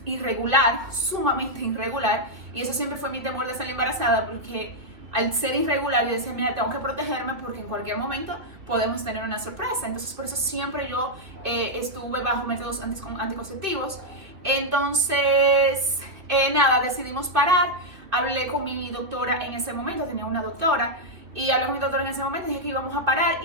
irregular, sumamente irregular, y eso siempre fue mi temor de salir embarazada, porque al ser irregular yo decía, mira, tengo que protegerme porque en cualquier momento podemos tener una sorpresa. Entonces por eso siempre yo estuve bajo métodos anticonceptivos. Entonces, nada, decidimos parar. Hablé con mi doctora en ese momento, tenía una doctora, y hablé con mi doctora en ese momento, dije que íbamos a parar,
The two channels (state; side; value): late; left; 2.6 ms